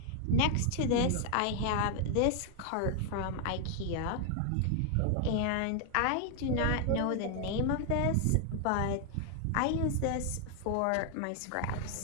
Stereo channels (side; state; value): both; different; correlation 0.00